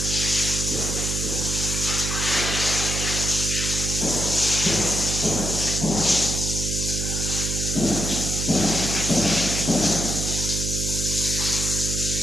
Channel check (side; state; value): right; noise; hum, 2 dB below the sound